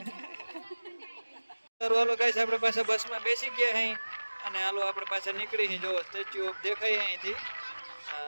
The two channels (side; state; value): both; inverted; correlation -1.00